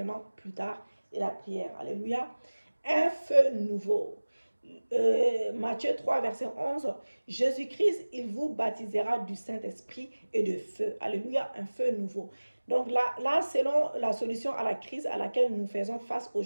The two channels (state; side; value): inverted; both; correlation -1.00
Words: plus tard et la prière. Alléluia. Un feu nouveau. Matthieu 3, verset 11. Jésus-Christ, il vous baptisera du Saint-Esprit et de feu. Alléluia, un feu nouveau. Donc là, selon la solution à la crise à laquelle nous faisons face